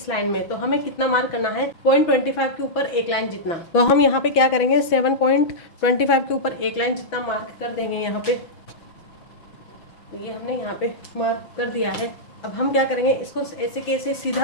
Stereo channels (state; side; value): late; right; 6.0 ms